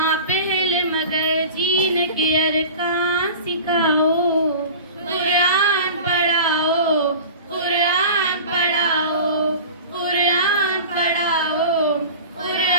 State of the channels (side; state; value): both; inverted; correlation -0.37